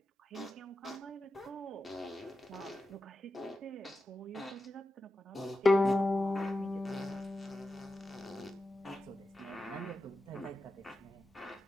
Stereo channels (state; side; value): normal; both; correlation 0.91